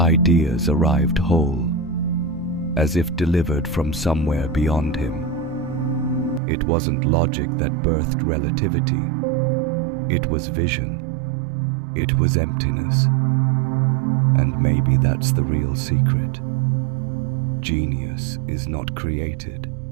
arrived whole, as if delivered from somewhere beyond him. It wasn't logic that birthed relativity. It was vision. It was emptiness. And maybe that's the real secret. Genius is not created.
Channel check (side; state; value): left; drops out; at 6.4 s